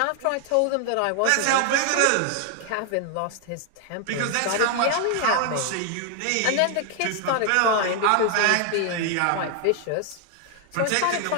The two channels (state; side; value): different; both; correlation 0.00